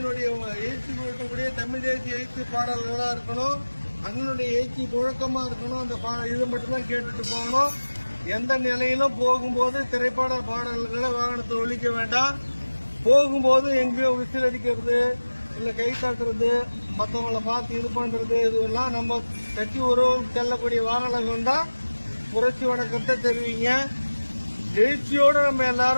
எழுச்சி கொடுக்கக்கூடிய தமிழ் தேசிய எழுச்சி பாடல்களா இருக்கணும். அண்ணனுடைய எழுச்சி முழக்கமா இருக்கணும். அந்த இது மட்டும்தான் கேட்டுட்டு போகணும். எந்த நிலையிலும் போகும்போது திரைப்பட பாடல்களை வாகனத்தை ஒழிக்க வேண்டாம். போகும்போது எங்கேயோ விசில் அடிக்கிறது, இல்ல கை தட்டுறது, மற்றவங்களை பார்த்து இது பண்றது, இதுவெல்லாம் நம்ம கட்சி உறவு செல்லக்கூடிய வாகனங்கள் தான் புரட்சி வணக்கத்தை தெரிவிங்க. எழுச்சியோடு நம்ம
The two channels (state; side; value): inverted; both; correlation -1.00